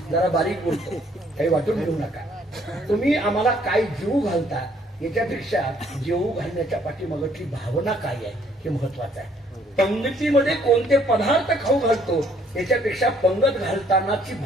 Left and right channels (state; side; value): normal; both; correlation 0.64